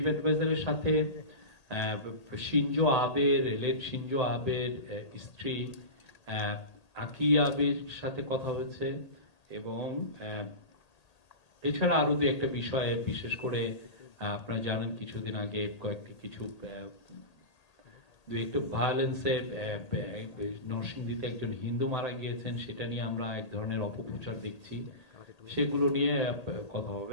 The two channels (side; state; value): right; late; 1.8 ms